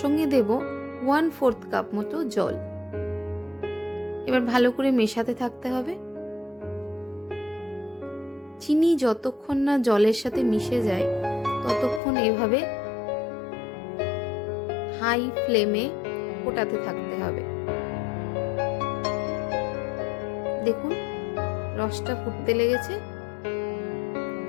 দেব 1/4 কাপ মতো জল। এবার ভালো করে মেশাতে থাকতে হবে। চিনি যতক্ষণ না জলের সাথে মিশে যায় ততক্ষণ এভাবে হাই ফ্লেমে ফোটাতে থাকতে হবে। দেখুন রসটা ফুটতে লেগেছে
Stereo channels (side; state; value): right; drops out; at 12.0 s